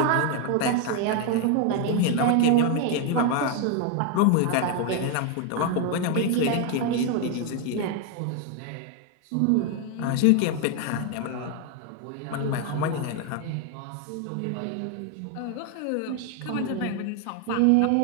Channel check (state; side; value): different; both; correlation 0.01